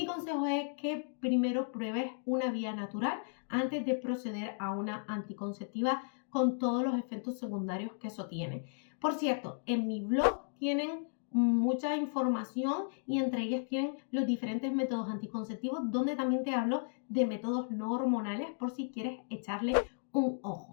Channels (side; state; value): right; silent; digital silence